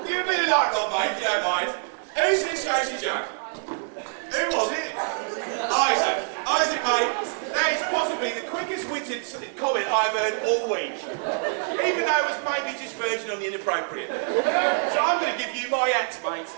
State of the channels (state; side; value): silent; left; 61 dB below the other